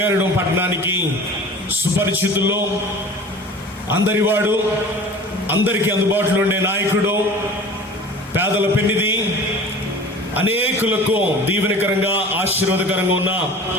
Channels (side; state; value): both; normal; correlation 0.41